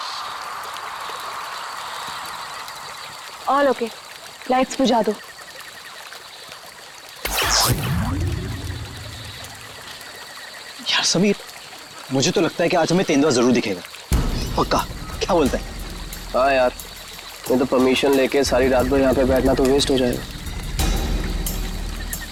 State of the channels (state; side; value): identical; both; correlation 1.00